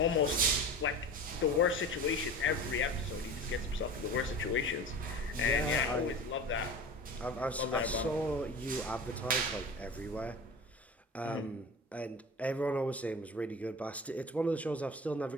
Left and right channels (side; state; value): both; normal; correlation 0.34